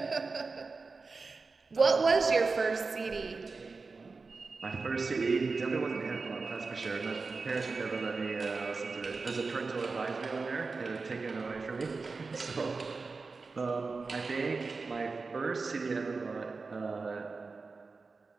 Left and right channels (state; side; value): quieter; left; 4.2 dB